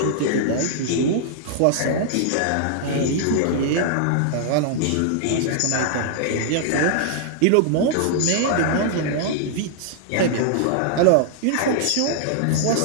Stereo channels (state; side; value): different; both; correlation -0.01